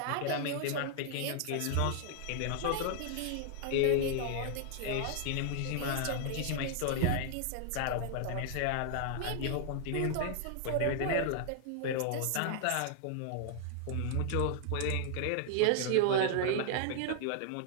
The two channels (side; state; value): both; different; correlation -0.01